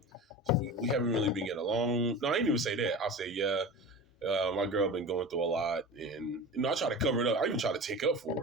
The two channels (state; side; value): normal; both; correlation 0.32